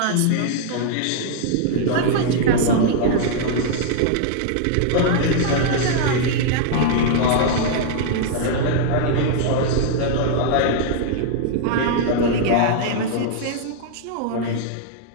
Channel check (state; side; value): different; both; correlation -0.01